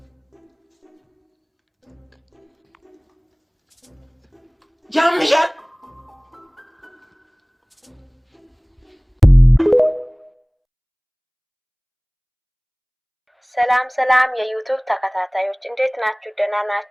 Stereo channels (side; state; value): both; identical; correlation 1.00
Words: ያምሻል። ሰላም የዩቲዩብ ተከታታዮች እንዴት ናችሁ? ደህና